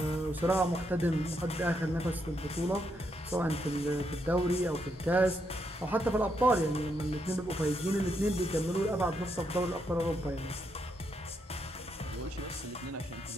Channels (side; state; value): both; normal; correlation 0.79